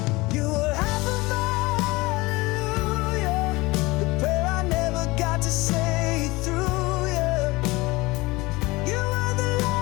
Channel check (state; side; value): quieter; right; 22.3 dB